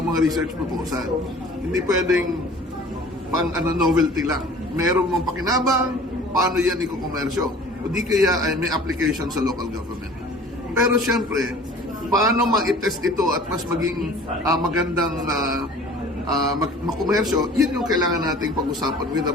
mga research proposal. Hindi pwedeng pang novelty lang. Meron mong pakinabang, paano yan ikukomersyo. O di kaya ay may application sa local government. Pero siyempre, paano ma-test ito at mas maging magandang makomersyo, yun yung kailangan nating pag-usapan with the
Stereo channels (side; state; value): both; normal; correlation 0.47